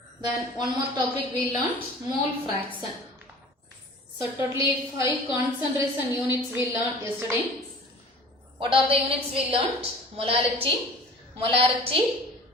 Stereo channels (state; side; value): normal; both; correlation 0.44